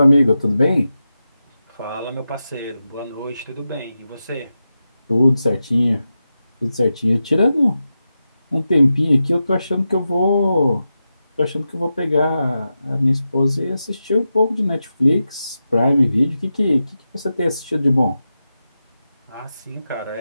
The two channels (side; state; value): both; inverted; correlation -0.90